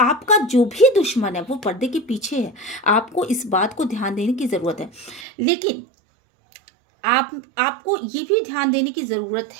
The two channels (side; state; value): left; drops out; at 5.2 s